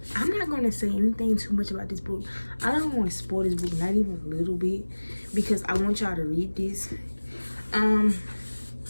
I'm not going to say anything too much about this book. I don't want to spoil this book, not even a little bit, because I want y'all to read this.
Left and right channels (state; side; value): inverted; both; correlation -1.00